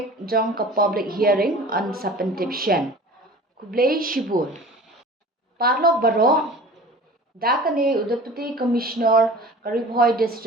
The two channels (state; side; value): normal; both; correlation 0.41